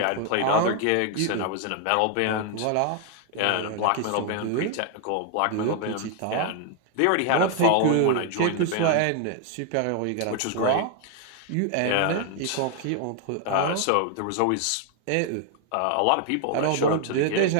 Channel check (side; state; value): both; different; correlation 0.00